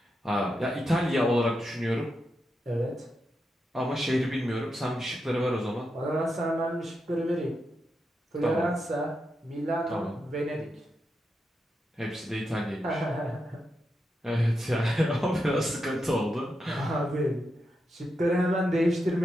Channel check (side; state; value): both; normal; correlation 0.86